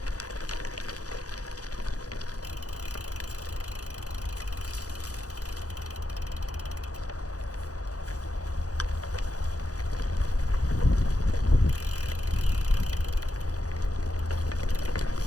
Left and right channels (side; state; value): right; late; 0.67 ms